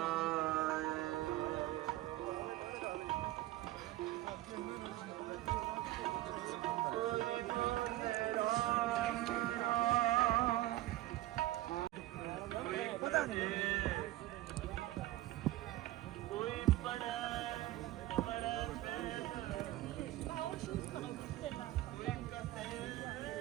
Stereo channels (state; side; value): quieter; left; 16.3 dB